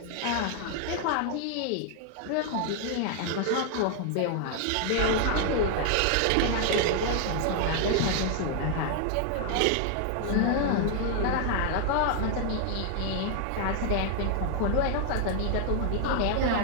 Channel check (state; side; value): different; both; correlation 0.00